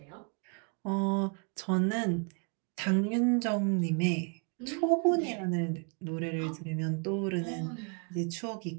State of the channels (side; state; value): left; quieter; 37.6 dB